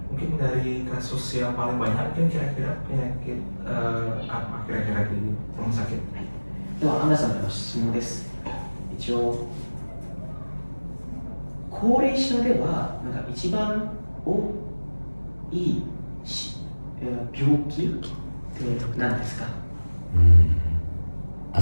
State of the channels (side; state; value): both; inverted; correlation -1.00